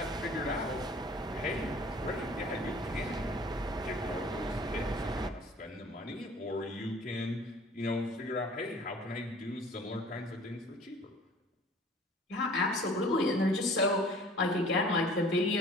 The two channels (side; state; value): both; normal; correlation 0.49